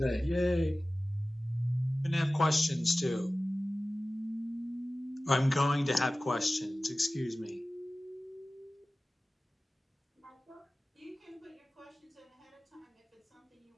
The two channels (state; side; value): normal; both; correlation 0.97